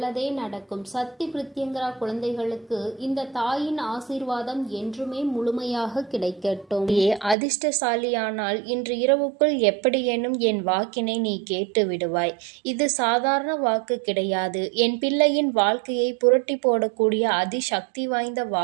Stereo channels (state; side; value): drops out; left; at 7.4 s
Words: நடக்கும். சக்தி பிரித்யங்கரா குழந்தைகளுக்கு இந்த தாயின் ஆசீர்வாதம் என்றுமே முழுமையாக கிடைக்கட்டும். அதிர்ஷ்டசாலியானால் இன்று இரவுக்குள் எப்படியேனும் என் வாக்கினை நீ கேட்டு விடுவாய். இது சாதாரண வாக்கு கிடையாது. என் பிள்ளையின் வாழ்க்கையை புரட்டி போடக்கூடிய அதிசக்தி வாய்ந்த